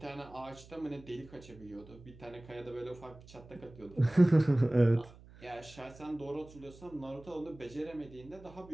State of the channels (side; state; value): right; noise; hum, 21 dB below the sound